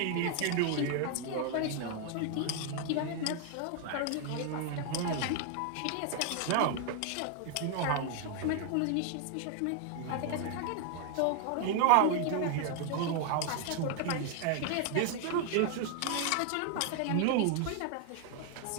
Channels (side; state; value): both; different; correlation 0.00